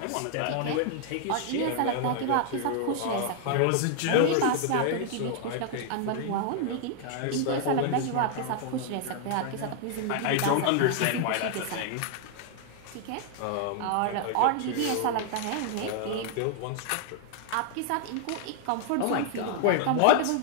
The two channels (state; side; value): different; both; correlation 0.00